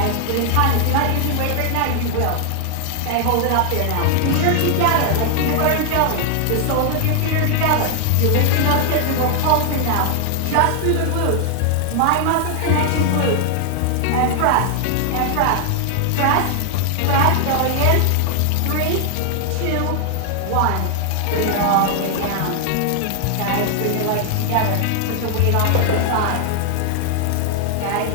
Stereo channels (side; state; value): both; different; correlation 0.00